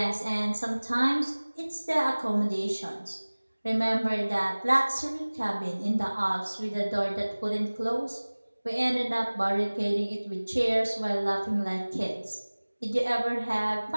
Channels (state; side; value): inverted; both; correlation -1.00